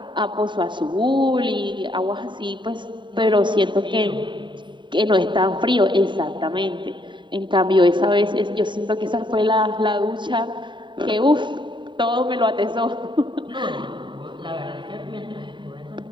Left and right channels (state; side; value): late; left; 0.23 ms